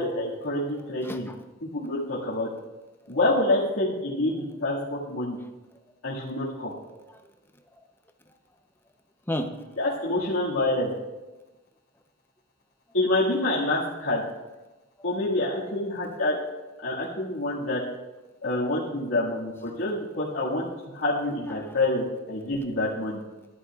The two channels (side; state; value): both; normal; correlation -0.01